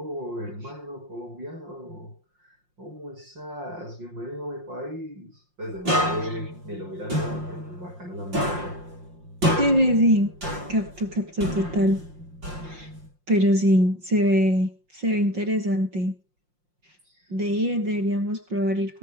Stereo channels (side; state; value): left; late; 5.6 ms